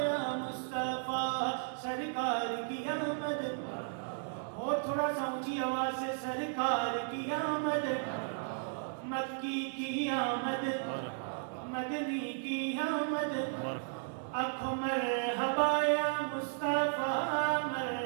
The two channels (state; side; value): silent; left; digital silence